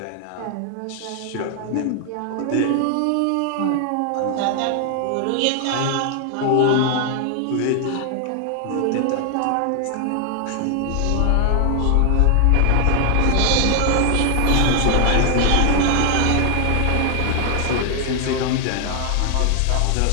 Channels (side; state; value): both; different; correlation 0.00